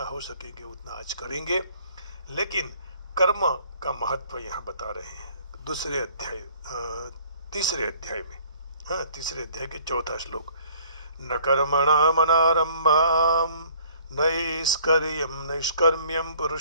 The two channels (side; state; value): both; inverted; correlation -0.57